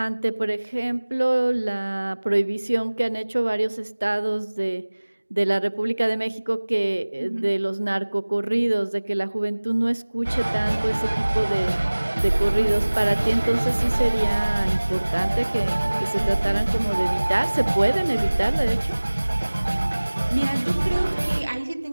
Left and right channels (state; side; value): inverted; both; correlation -1.00